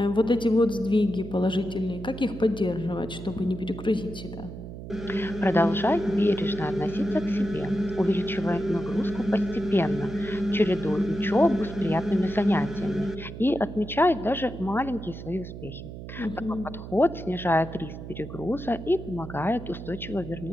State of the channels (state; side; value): noise; right; hum, 11 dB below the sound